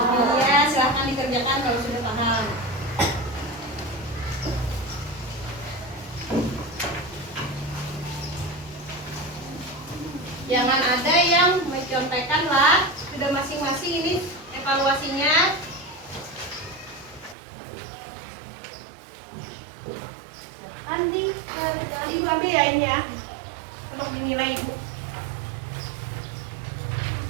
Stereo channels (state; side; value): drops out; left; at 17.4 s